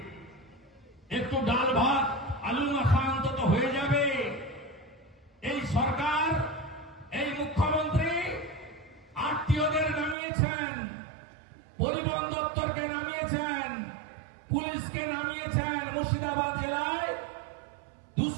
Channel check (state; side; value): drops out; left; at 10.2 s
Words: একটু ডাল ভাত আলু মাখা অন্তত হয়ে যাবে। এই সরকার, এই মুখ্যমন্ত্রী আত্মীয়দের নামিয়েছেন, পরিবহন দপ্তরকে নামিয়েছেন, পুলিশকে নামিয়েছেন। মুর্শিদাবাদ জেলায়